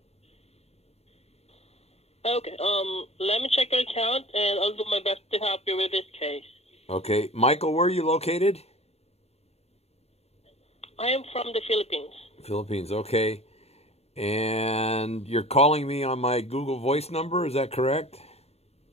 Okay, let me check your account, and I'll do my best to help you with this case. Okay. Michael, where are you located? I am from the Philippines. Philippines, okay. And you're calling me on my Google Voice number, is that correct?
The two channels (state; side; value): late; right; 0.30 ms